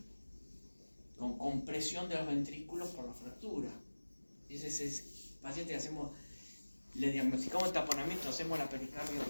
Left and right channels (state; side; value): inverted; both; correlation -1.00